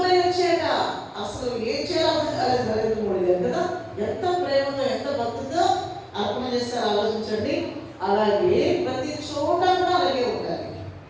వచ్చేట అసలు ఏం చేయాలి నరేంద్ర మోడీ గారు కదా. ఎంత ప్రేమతో ఎంత భక్తితో అర్పణ చేస్తారో ఆలోచించండి. అలాగే ప్రతి చోట కూడా అలాగే ఉండాలి.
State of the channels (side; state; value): both; identical; correlation 1.00